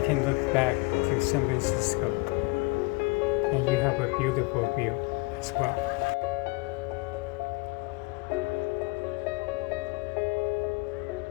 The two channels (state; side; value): quieter; right; 26.3 dB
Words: look back to San Francisco, and you have a beautiful view as well.